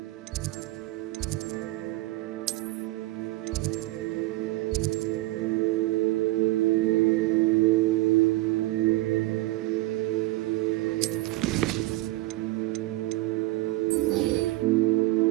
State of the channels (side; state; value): left; quieter; 19.1 dB